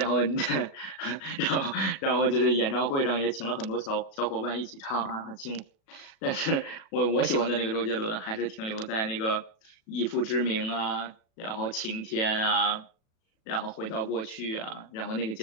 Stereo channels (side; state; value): right; late; 37 ms